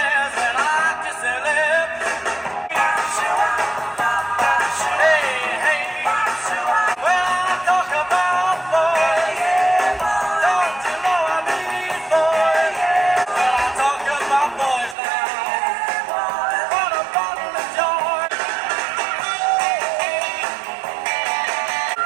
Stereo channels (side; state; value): left; drops out; at 15.0 s